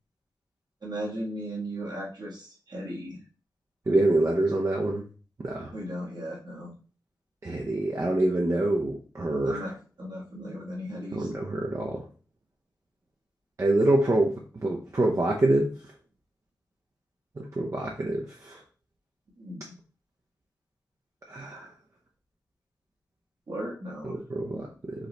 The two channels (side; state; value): both; normal; correlation 0.89